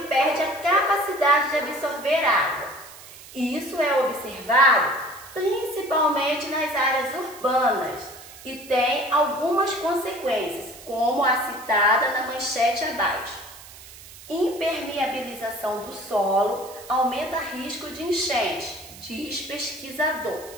perde a capacidade de absorver água. Isso é observado principalmente nas áreas urbanas e tem algumas consequências, como a citada na manchete abaixo. Impermeabilização do solo aumenta risco de enchente, diz pesquisador.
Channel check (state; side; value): noise; right; hiss, 18 dB below the sound